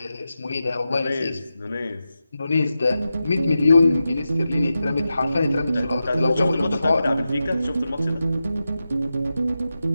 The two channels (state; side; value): inverted; both; correlation -0.91